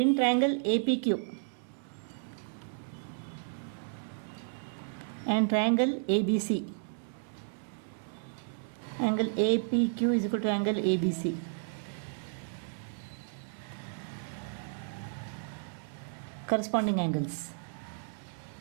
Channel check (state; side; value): silent; left; 56 dB below the other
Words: triangle APQ and triangle ABC, Angle APQ is equal to angle ABC. Corresponding angles.